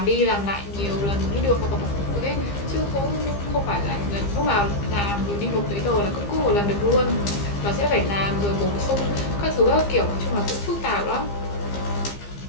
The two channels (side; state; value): right; late; 15 ms